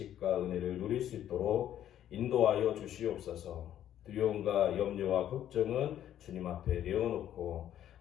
은혜를 누릴 수 있도록 인도하여 주시옵소서. 두려움과 염려와 걱정은 주님 앞에 내어놓고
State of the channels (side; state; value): right; quieter; 11.1 dB